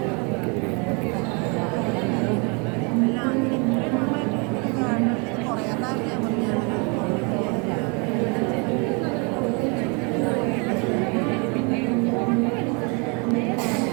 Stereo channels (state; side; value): quieter; left; 32.3 dB